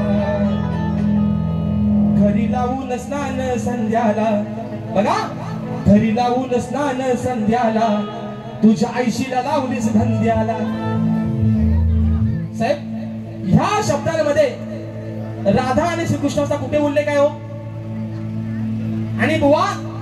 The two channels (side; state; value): both; identical; correlation 1.00